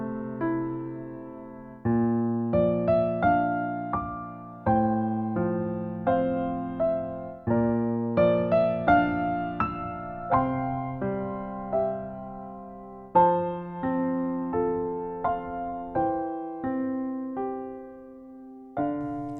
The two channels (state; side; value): identical; both; correlation 1.00